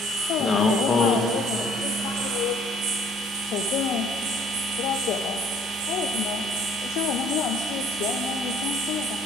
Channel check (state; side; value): normal; both; correlation 0.57